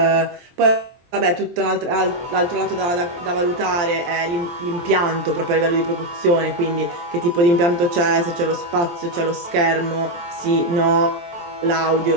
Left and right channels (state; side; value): late; left; 23 ms